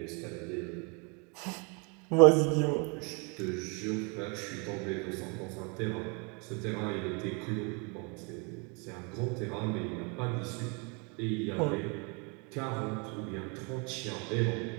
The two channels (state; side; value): quieter; left; 33.1 dB